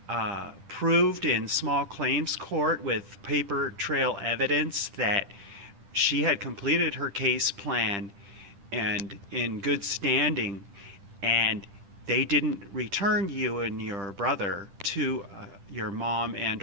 proved in small claims court with paper trail evidence that she had completed her case plan and in good standing, and they didn't return you and your brother to your mom and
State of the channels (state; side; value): late; left; 10 ms